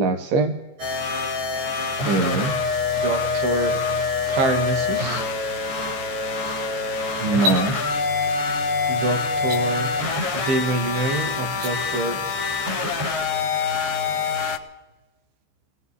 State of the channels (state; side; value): late; left; 15 ms